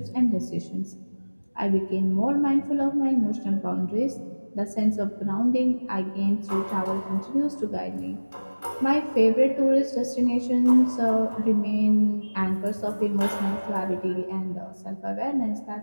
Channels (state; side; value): inverted; both; correlation -1.00